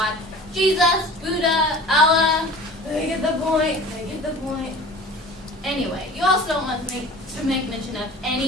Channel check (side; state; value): both; normal; correlation 0.42